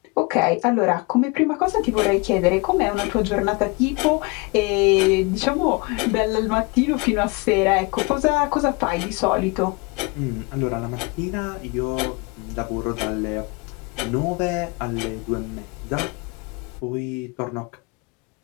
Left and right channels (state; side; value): quieter; right; 28.4 dB